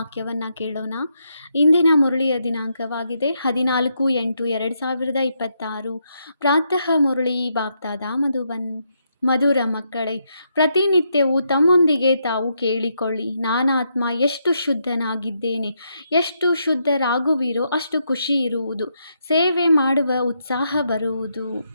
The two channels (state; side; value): inverted; both; correlation -0.79